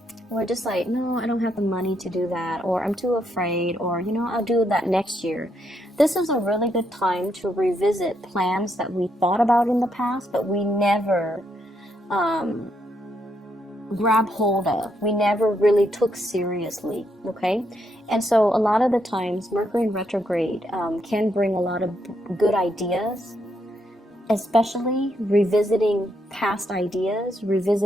we're just like, no, I don't have the money to do that, or I'm too afraid, or, I'll do that next year. This is a really good time to revisit plans that we thought about in the past, but we never grab hold of. We never really took seriously, okay? And so a lot of the times, Mercury in retrograde can bring a lot of good ideas, especially revisiting past ideas,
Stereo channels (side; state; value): both; normal; correlation 0.77